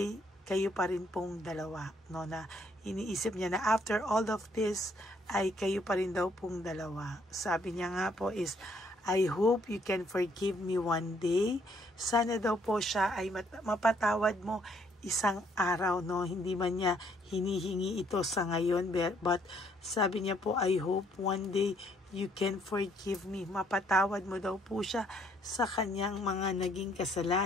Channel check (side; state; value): both; normal; correlation 0.67